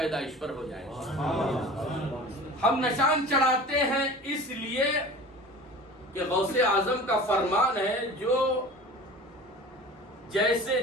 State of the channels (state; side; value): normal; both; correlation 0.39